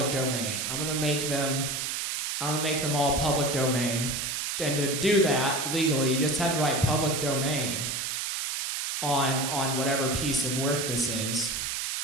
domain. I'm gonna make them all public domain. And to do that legally, you just have to write public domain on whatever piece of work this is,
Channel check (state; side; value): noise; right; hiss, 2 dB below the sound